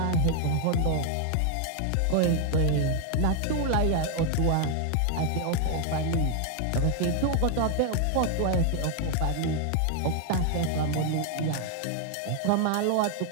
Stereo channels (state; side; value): different; both; correlation 0.00